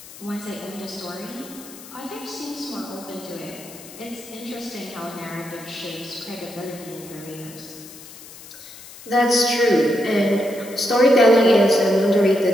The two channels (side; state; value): left; noise; hiss, 17 dB below the sound